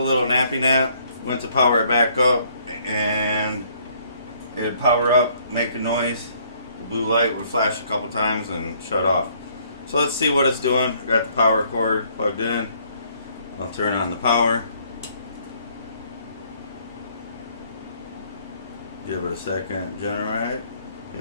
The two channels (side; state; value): both; inverted; correlation -0.64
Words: little nappy nap, went to power it back up, and it'd power up, make a noise. The blue light would flash a couple times and shut off. So let's see what it's doing. I got the power cord plugged in. I'll turn on the power. Give it a second, generate.